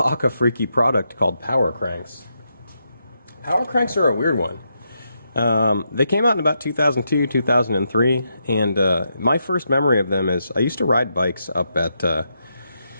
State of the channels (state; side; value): inverted; both; correlation -0.82